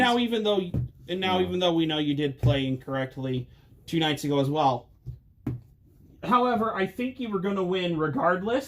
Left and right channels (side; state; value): both; identical; correlation 1.00